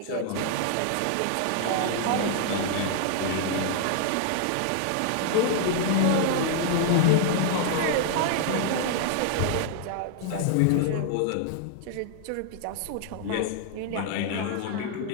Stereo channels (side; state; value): both; different; correlation -0.01